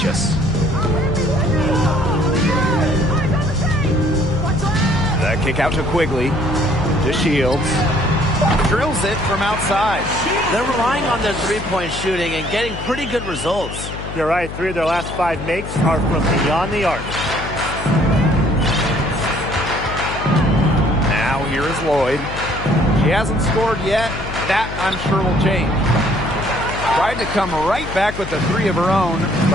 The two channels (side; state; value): left; noise; hum, 9 dB below the sound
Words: The kick out to Quigley. To Shields. Drills it from outside. They're relying on their three-point shooting and getting pretty good results. You're right. 3 of their last 5 makes are from beyond the arc. Now here is Lloyd. She hasn't scored yet. That, I'm sure, will change. Tried to come right back with the 3 of her own,